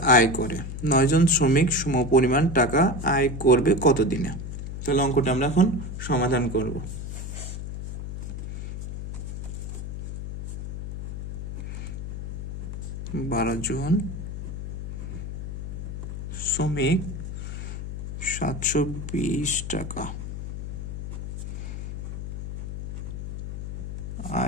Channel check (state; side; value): noise; left; hum, 6 dB below the sound